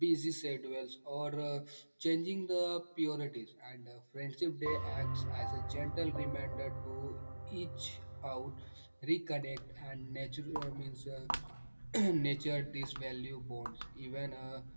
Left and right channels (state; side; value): inverted; both; correlation -1.00